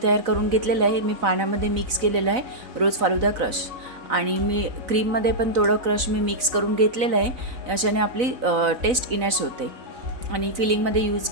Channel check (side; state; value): left; late; 4.0 ms